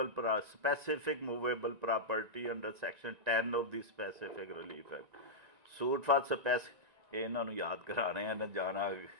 specific movable property under section 10 of the specific relief act. Suit for ਇਹਨਾਂ ਨੂੰ ਯਾਦ ਕਰਾਣੇ ਆ ਨਾ ਜਾਣਾ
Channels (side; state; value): left; late; 1.9 ms